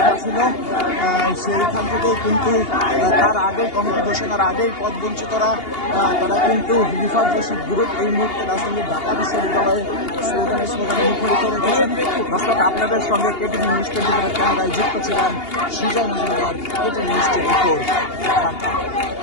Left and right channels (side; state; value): right; late; 2.8 ms